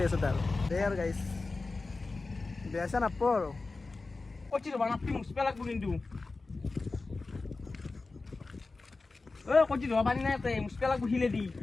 আছে তাৰ দে আৰু গাইজ বেয়া চেয়া নাপাব আৰু কচি ৰবা নাপি মুচপা লাগব কিন্তু কচি ৰবা পানী নাই তাতে মুচপা লাগব হিলে দি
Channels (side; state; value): right; quieter; 3.7 dB